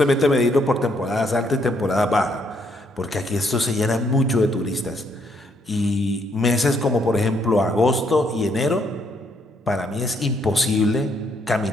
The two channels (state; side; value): normal; both; correlation 0.72